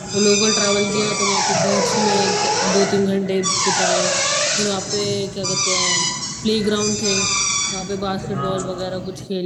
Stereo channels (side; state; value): both; identical; correlation 1.00